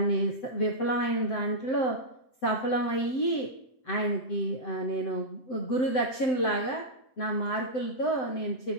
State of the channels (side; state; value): right; late; 7.8 ms